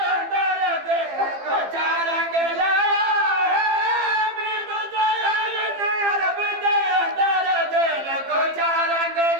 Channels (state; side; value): late; left; 15 ms